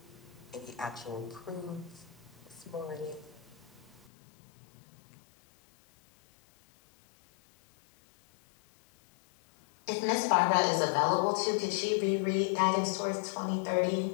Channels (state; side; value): drops out; right; at 4.0 s